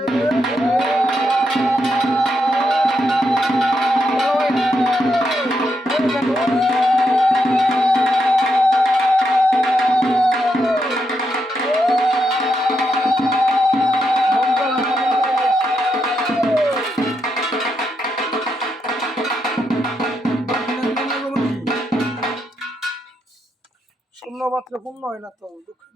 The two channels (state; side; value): normal; both; correlation 0.81